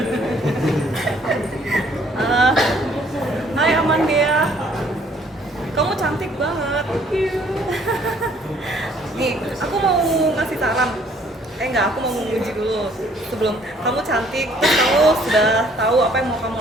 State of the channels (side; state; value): both; normal; correlation 0.61